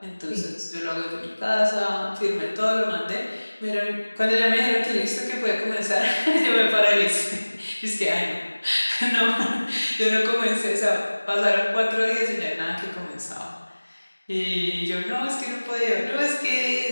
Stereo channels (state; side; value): inverted; both; correlation -1.00